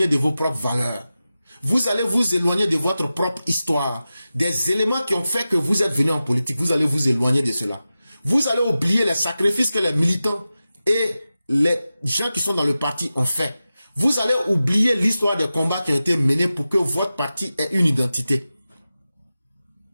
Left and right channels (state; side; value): inverted; both; correlation -0.94